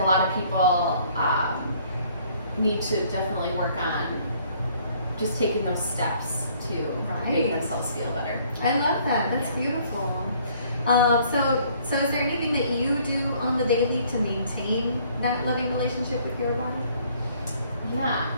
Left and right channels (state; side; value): inverted; both; correlation -0.60